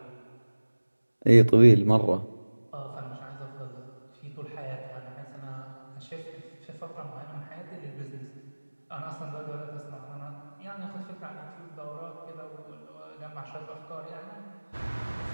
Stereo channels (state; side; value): inverted; both; correlation -1.00